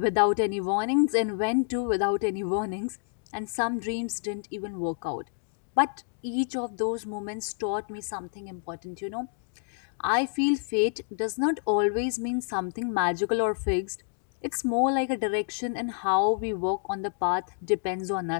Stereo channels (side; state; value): right; silent; digital silence